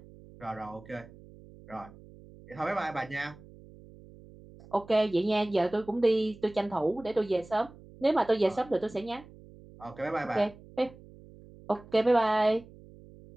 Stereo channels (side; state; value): right; noise; hum, 21 dB below the sound